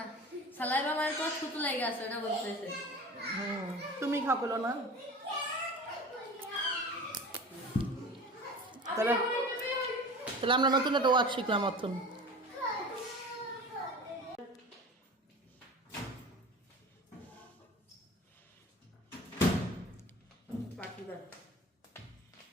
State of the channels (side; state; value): both; normal; correlation 0.37